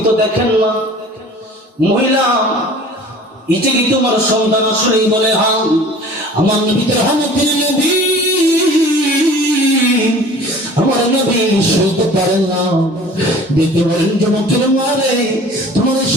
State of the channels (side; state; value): both; normal; correlation 0.46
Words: তো দেখেন না মহিলা এটা কি তোমার সন্তান আসলেই বলে হ্যাঁ আমার নবী তো রহমতের নবী আমার নবী সইতে পারেন না দেখতে বলেন যুবকের মারে তোমার এই